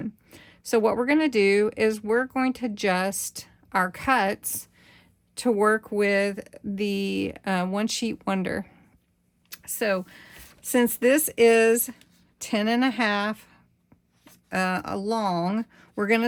So what we're going to do is we're going to adjust our cuts to work with the one sheet wonder. So since this is 10.5 long, we're going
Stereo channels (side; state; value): both; identical; correlation 1.00